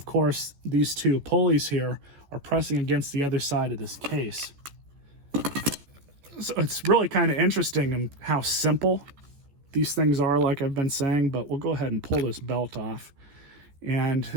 course, these two pulleys here are pressing against the other side of this case. So it's really kind of interesting in how simple these things are, like I've been saying, but we'll go ahead and pull this belt off. And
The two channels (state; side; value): late; left; 14 ms